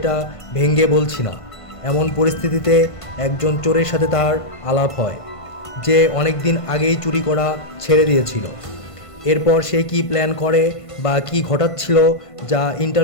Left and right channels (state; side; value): late; right; 1.5 ms